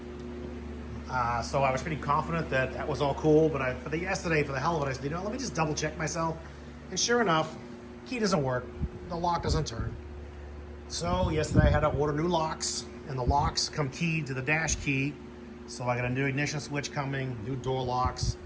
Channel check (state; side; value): identical; both; correlation 1.00